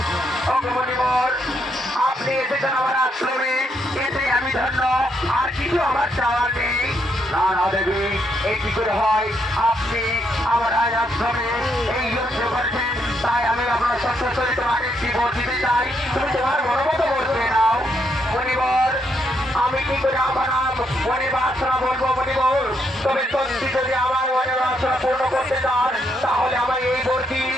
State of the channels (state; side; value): normal; both; correlation 0.76